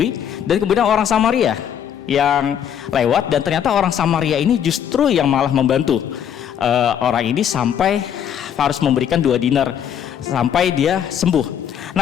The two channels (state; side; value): quieter; right; 9.0 dB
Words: dan kemudian orang Samaria yang lewat, dan ternyata orang Samaria ini justru yang malah membantu orang ini sampai harus memberikan 2 dinar sampai dia sembuh.